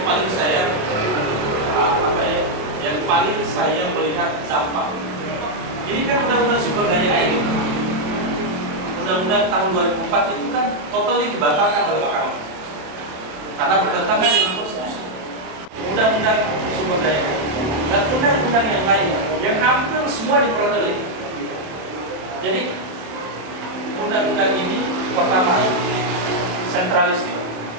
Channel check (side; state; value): left; late; 28 ms